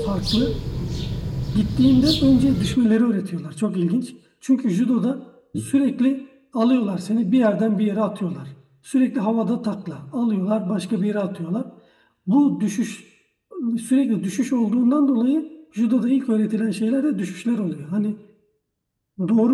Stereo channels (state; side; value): identical; both; correlation 1.00